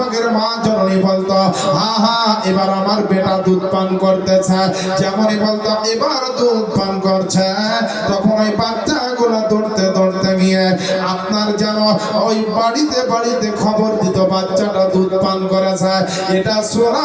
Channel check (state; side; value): identical; both; correlation 1.00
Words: মা জননী বলতো, হা হা এবার আমার বেটা দুধ পান করতেছে। যেমনই বলতো এবার দুধ পান করছে, তখন ওই বাচ্চাগুলো দৌড়তে দৌড়তে গিয়ে আপনার যেন ওই বাড়িতে বাড়িতে খবর দিত বাচ্চাটা দুধ পান করেছে। এটা